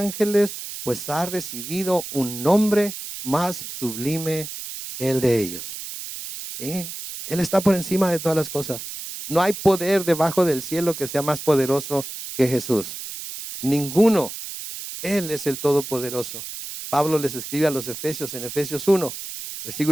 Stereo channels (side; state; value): right; noise; hiss, 9 dB below the sound